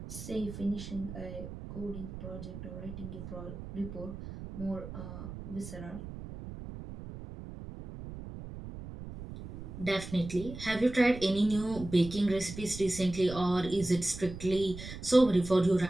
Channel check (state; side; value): noise; right; rumble, 11 dB below the sound